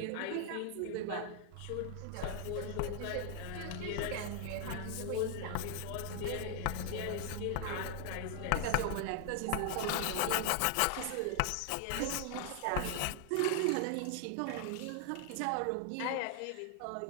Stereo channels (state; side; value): different; both; correlation 0.00